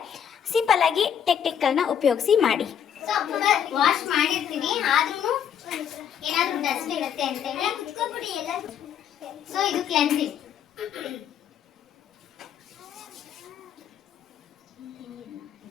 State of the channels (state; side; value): quieter; right; 8.8 dB